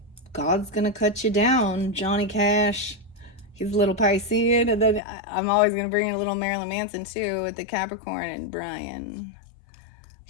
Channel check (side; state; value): right; drops out; at 5.0 s